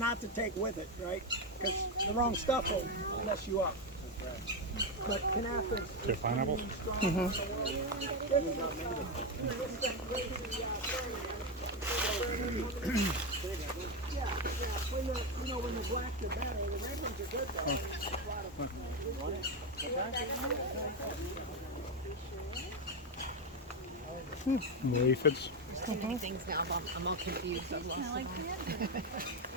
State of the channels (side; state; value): both; normal; correlation 0.09